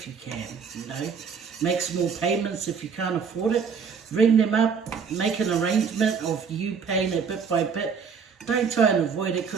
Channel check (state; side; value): quieter; left; 6.2 dB